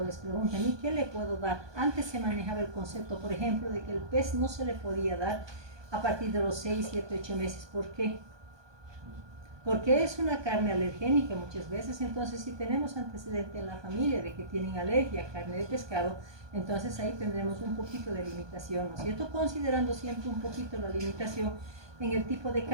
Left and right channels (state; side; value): late; left; 1.2 ms